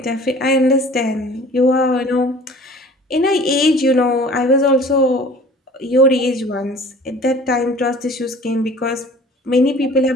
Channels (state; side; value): normal; both; correlation 0.47